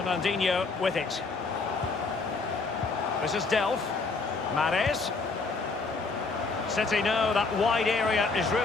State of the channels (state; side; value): quieter; right; 4.1 dB